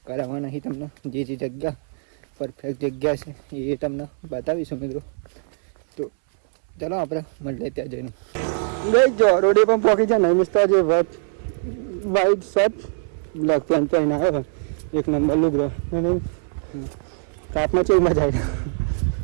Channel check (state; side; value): silent; left; 64 dB below the other